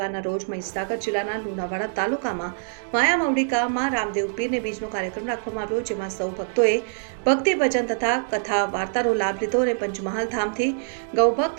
રોજ મહીસાગર જિલ્લાના લુણાવાડા તાલુકામાં માયા મવડીકામાં રામદેવ પીરને બીજનો કાર્યક્રમ રાખવામાં આવ્યો, જેમાં સૌ ભક્તોએ ભક્તિ ભજન તથા કથા વાર્તાનો લાભ લીધો અને પંચમહાલ ધામથી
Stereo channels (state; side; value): silent; left; 62 dB below the other